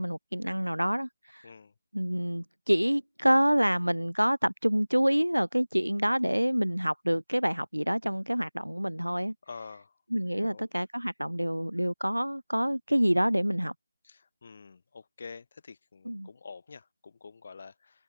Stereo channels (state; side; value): inverted; both; correlation -1.00